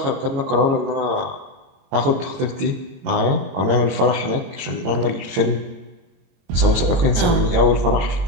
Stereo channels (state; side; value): late; left; 22 ms